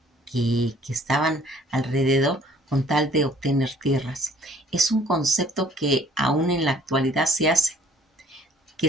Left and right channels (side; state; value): both; normal; correlation 0.56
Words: estaban alrededor con tal de obtener tierras. Es un concepto que aún en la actualidad se hace